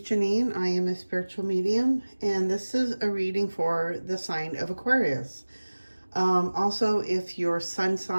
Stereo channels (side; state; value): both; inverted; correlation -1.00